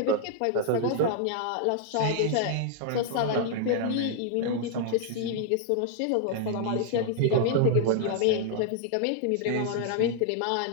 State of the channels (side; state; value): both; different; correlation -0.01